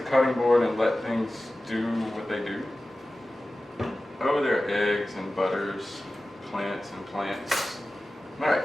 cutting board and let things do what they do. Oh, there are eggs and butters, plants and plants. All right,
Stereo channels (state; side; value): normal; both; correlation 0.95